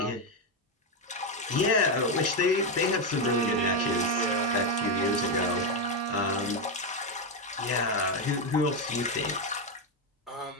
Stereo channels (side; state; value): both; normal; correlation 0.06